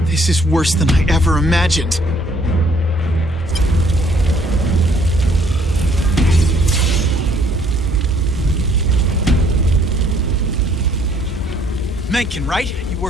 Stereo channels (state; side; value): normal; both; correlation 0.63